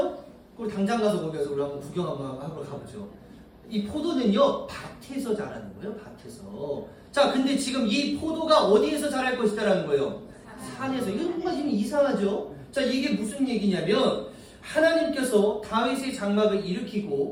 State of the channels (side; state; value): both; identical; correlation 1.00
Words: 그럼 당장 가서 거기서 우리 한번 구경 한번 하러 가보죠. 이 포도는요, 밭에서 자라는 거예요, 밭에서. 자, 근데 지금 이 포도가 어디에서 자랄 것이다라는 거예요? 산에서. 이거 뭔가 지금 이상하죠? 자, 이게 무슨 얘기냐면, 하나님께서 다윗의 장막을